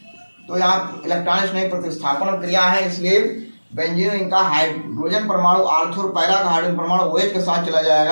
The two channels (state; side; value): inverted; both; correlation -1.00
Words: तो यहाँ इलेक्ट्रॉन स्नेही प्रतिस्थापन क्रिया है, इसलिए बेंजीन इनका हाइड्रोजन परमाणु आर्थो और पैरा का हाइड्रोजन परमाणु OH के साथ चला